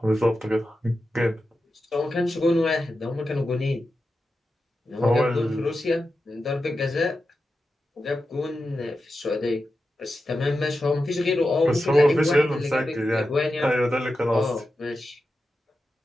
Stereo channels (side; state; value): both; normal; correlation 0.91